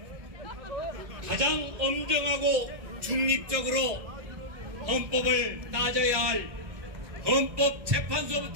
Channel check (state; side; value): late; left; 1.7 ms